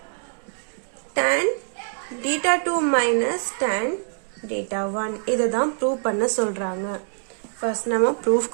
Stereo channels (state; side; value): silent; left; 62 dB below the other